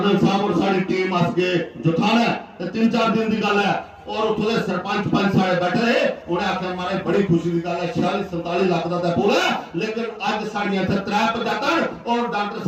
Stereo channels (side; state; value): both; identical; correlation 1.00